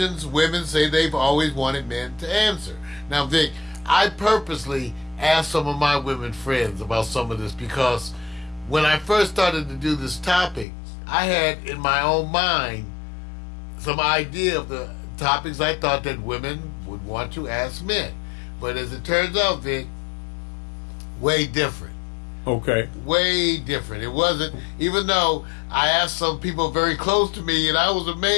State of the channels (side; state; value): right; drops out; at 10.7 s